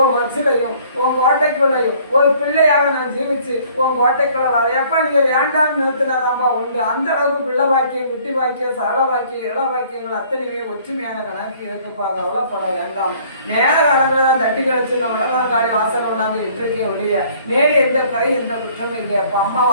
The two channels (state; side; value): inverted; both; correlation -0.57